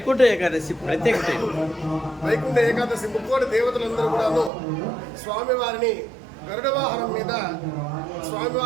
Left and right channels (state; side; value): drops out; left; at 4.5 s